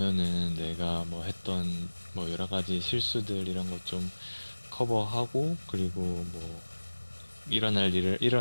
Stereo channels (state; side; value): inverted; both; correlation -1.00